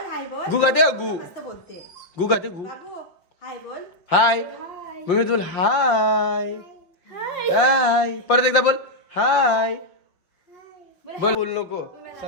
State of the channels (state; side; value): late; right; 5.7 ms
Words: गु गाते गु गाते गु. हाय मम्मी बोल हाय. परत एकदा बोल हाय. बोल नको